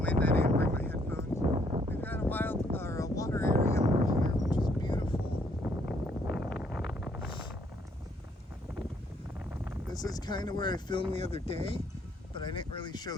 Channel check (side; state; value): both; normal; correlation 0.68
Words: wind, I didn't bring my headphones. We've got a water area over here which is beautiful. This is kind of where I filmed the other day, but I didn't really show